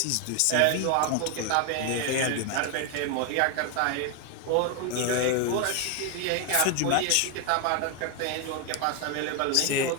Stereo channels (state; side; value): different; both; correlation 0.01